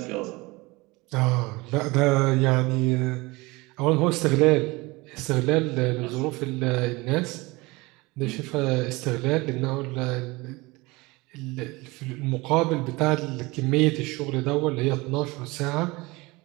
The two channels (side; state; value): left; quieter; 23.1 dB